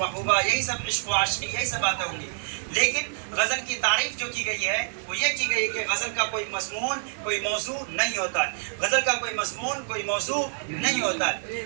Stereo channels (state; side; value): silent; left; digital silence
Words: یہی سب عشق و عاشقی یہی سب باتیں ہوں گی. لیکن غزل کی تعریف جو کی گئی ہے وہ یہ کی گئی کہ غزل کا کوئی مضمون کوئی موضوع نہیں ہوتا ہے. غزل کا کوئی مضمون کوئی موضوع نہیں ہوتا ہے.